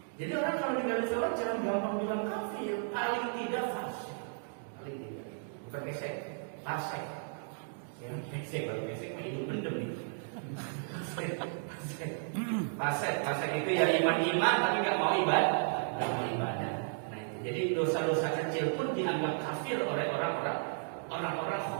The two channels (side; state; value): left; silent; digital silence